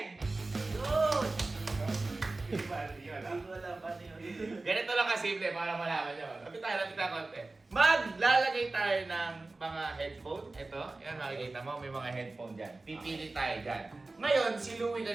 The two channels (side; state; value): left; quieter; 3.2 dB